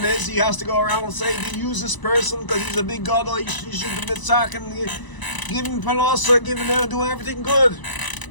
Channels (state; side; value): late; right; 1.0 ms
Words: is he has to go around and say, do you use this person because he's a big god, or you should be mitzak and give him panosa, give him doing everything good.